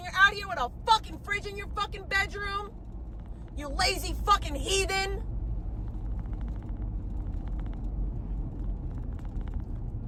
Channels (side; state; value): both; identical; correlation 1.00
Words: you're out here with a fucking fridge in your fucking bedroom. You lazy fucking heathen.